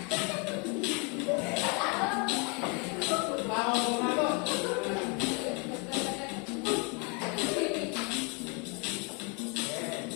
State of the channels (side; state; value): right; quieter; 33.1 dB